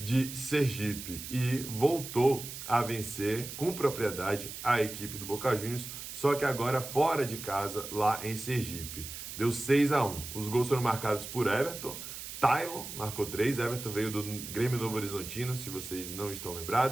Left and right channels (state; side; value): noise; right; hiss, 9 dB below the sound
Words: Sergipe e voltou a vencer com propriedade a equipe do Boca Juniors, só que agora fora de casa, lá em Sergipe. Deu 6-1. Os gols foram marcados por Everton. Tylon marcou 3, Everton veio do Grêmio Novo Horizontino, se vocês não estão